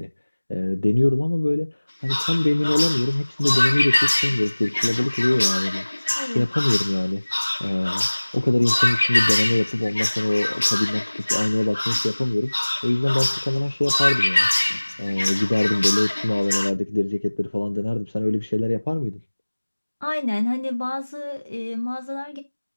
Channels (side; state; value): both; inverted; correlation -1.00